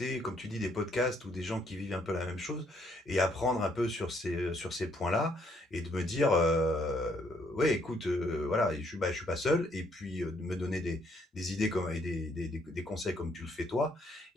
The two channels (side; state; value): both; normal; correlation 0.69